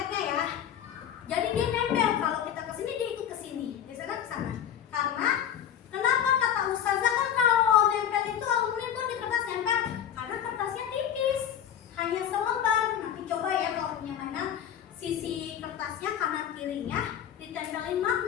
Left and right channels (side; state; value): right; quieter; 9.6 dB